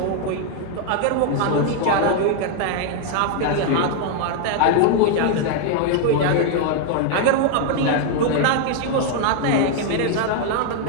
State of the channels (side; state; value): both; different; correlation 0.00